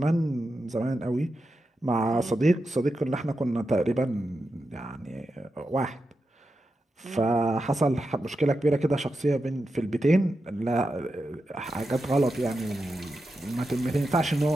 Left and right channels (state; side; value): normal; both; correlation 0.89